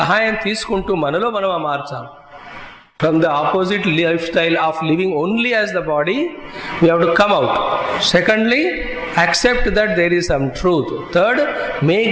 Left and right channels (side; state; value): both; identical; correlation 1.00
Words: తీసుకుంటూ మనలో మనం మార్చాలి. From the opposite lifestyle of living only as the body, we have to come out. Secondly, accept that there is some truth. Third, make